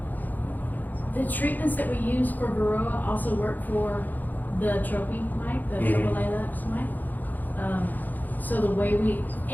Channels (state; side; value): late; right; 0.085 ms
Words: the treatments that we use for varroa also work for the trophy mite, the Tropilaps mite. So the way